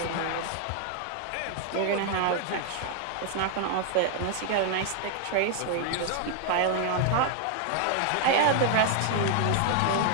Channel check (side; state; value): both; different; correlation 0.00